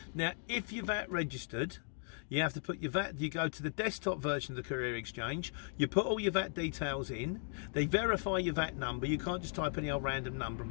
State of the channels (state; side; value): silent; right; 53 dB below the other